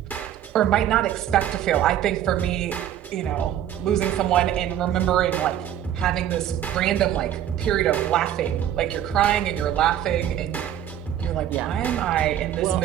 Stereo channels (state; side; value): quieter; left; 10.9 dB